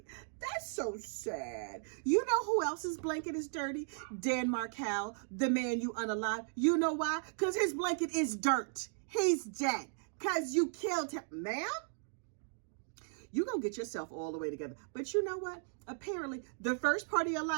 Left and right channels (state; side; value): silent; left; digital silence